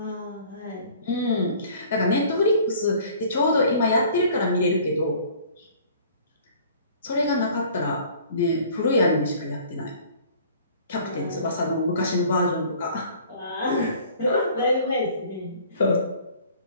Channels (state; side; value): inverted; both; correlation -0.51